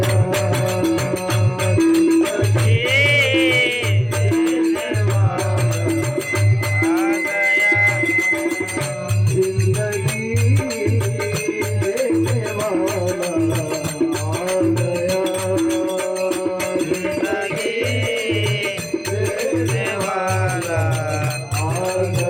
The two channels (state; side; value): identical; both; correlation 1.00